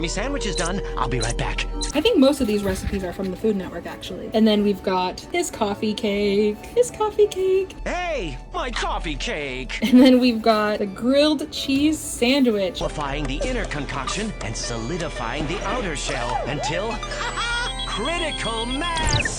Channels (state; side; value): identical; both; correlation 1.00